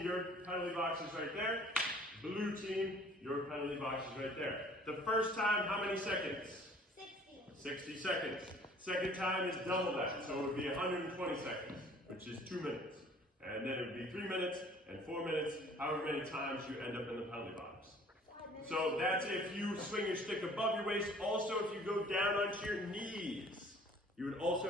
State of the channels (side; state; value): both; normal; correlation 0.53